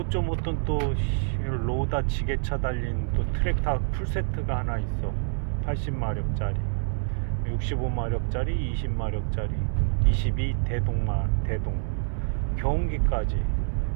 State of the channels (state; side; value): silent; left; 60 dB below the other